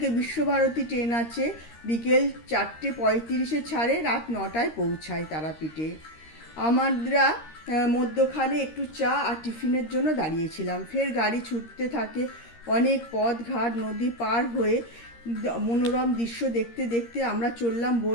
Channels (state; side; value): late; right; 13 ms